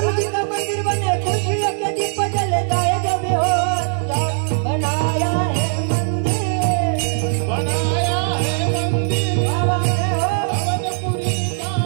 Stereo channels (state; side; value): silent; left; 66 dB below the other